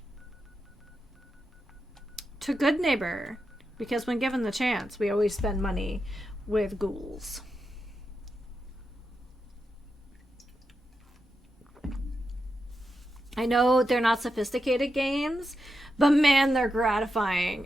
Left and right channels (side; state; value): both; normal; correlation 0.87